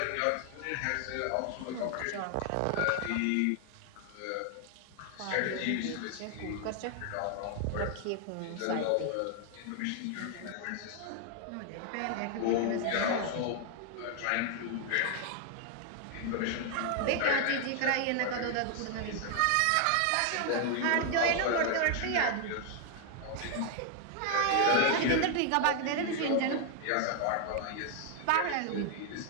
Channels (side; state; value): both; different; correlation 0.00